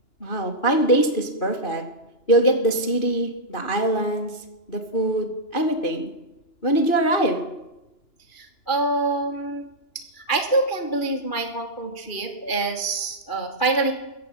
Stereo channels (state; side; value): late; right; 2.9 ms